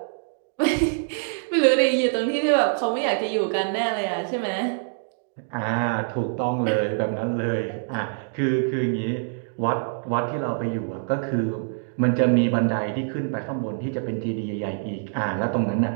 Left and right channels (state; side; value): silent; left; digital silence